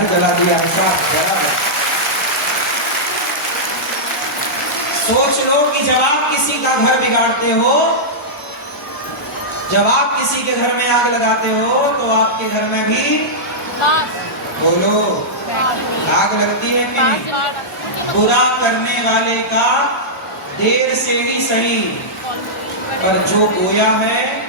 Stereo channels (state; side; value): normal; both; correlation -0.11